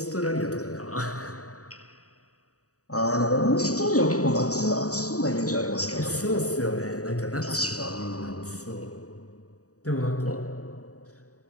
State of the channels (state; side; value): late; right; 0.66 ms